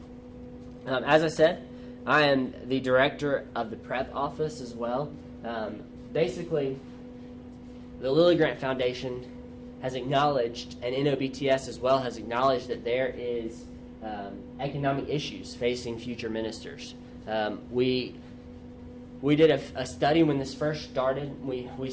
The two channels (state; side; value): identical; both; correlation 1.00